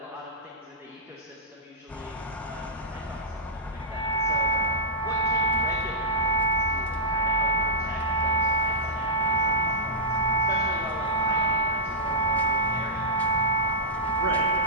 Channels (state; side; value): normal; both; correlation -0.13